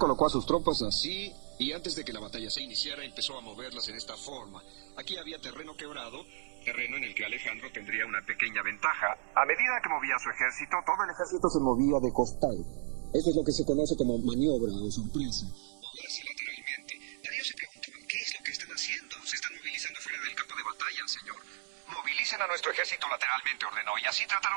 a sus tropas así, y antes de que la batalla se iniciara empezó a moverlas en esta forma. Aquí había terreno quebrado, terreno en el que Alejandro tendría una pequeña ventaja. A medida que movía su ejército, todo el ejército se movía de costado. Eso es lo que se conoce como maniobra o sorpresa. Moverse lateralmente. Darío se preguntaba: ¿qué es lo que están haciendo? Se están movilizando fuera del campo de batalla, señor. Movilicen a nuestro ejército lateralmente, ordenó, y así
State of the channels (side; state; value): left; silent; 55 dB below the other